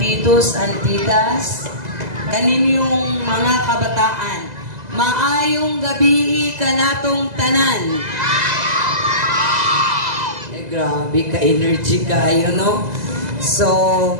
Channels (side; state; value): left; late; 2.0 ms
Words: and titas, kaninyong mga kabataan, maayong gabi kanatong tanan. Grabe ka energy kayo, no? So,